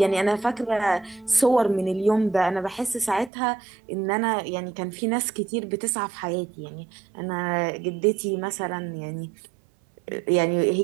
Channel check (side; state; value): left; drops out; at 3.3 s